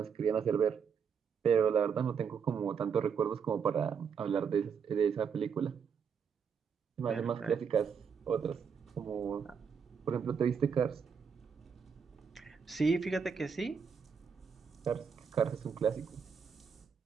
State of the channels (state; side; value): quieter; left; 6.6 dB